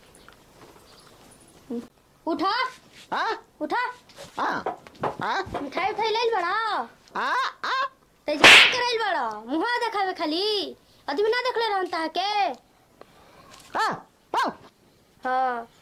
उठा उठा मिठाई उठाई ले बड़ा तेज क्या करैल बड़ा मुहा देखावे खाली आदमी ना देखले रहता है के। हाँ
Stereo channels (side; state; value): both; identical; correlation 1.00